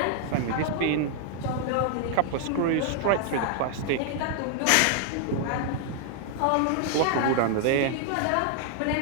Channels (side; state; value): both; different; correlation 0.00